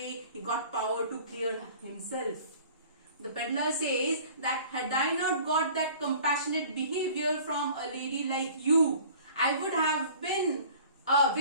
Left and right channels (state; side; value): inverted; both; correlation -0.47